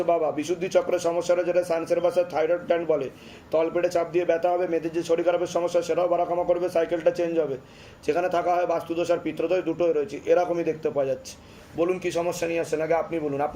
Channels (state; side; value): identical; both; correlation 1.00